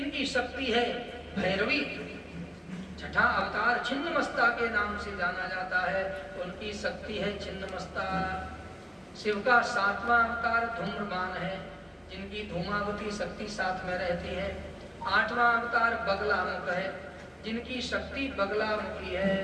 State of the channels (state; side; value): identical; both; correlation 1.00